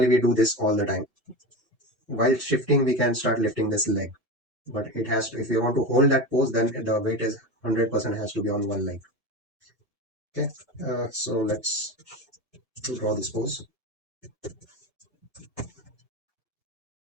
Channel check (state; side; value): normal; both; correlation 0.23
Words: we do this all the time. While shifting, we can start lifting this leg. But it has to, if you want to hold that pose, then the weight is 100% has to be on one leg. Okay, so let's draw this pose.